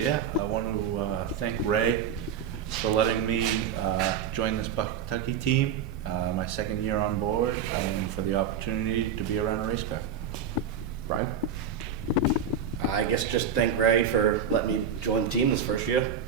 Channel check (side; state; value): left; quieter; 7.0 dB